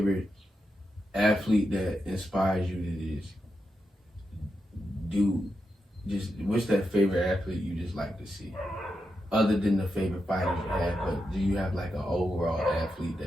athlete that inspires you to just what's that favorite athlete you just like to see, other than the favorite fighters you have? But do you have like an overall athlete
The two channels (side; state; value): both; normal; correlation 0.86